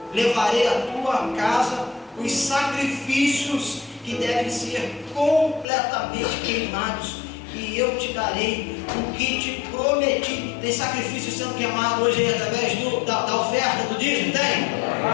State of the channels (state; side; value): drops out; right; at 5.7 s